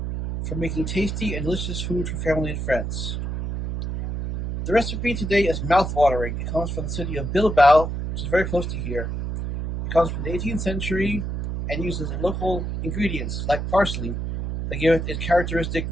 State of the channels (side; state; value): right; noise; hum, 3 dB below the sound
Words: from making tasty and delicious food for family and friends. The recipe today is mouth-watering. It comes from the city of Bilbao, which is very close to here. It comes from the 18th century and uses local ingredients like parsley that give it its characteristic